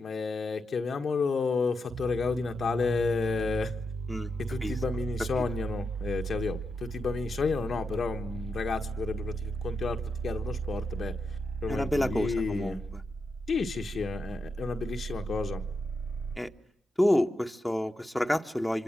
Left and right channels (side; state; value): both; normal; correlation 0.86